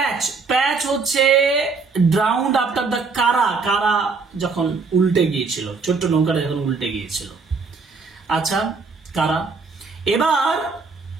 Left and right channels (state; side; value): quieter; left; 4.5 dB